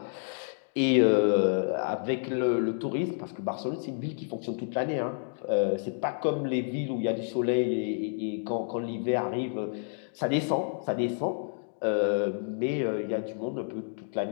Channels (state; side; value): silent; right; digital silence